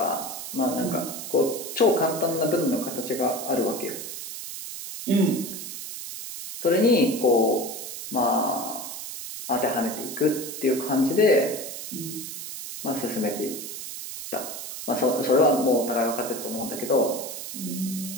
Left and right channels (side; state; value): right; noise; hiss, 8 dB below the sound